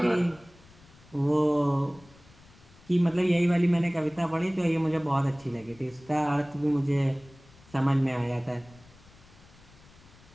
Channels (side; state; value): left; noise; rumble, 25 dB below the sound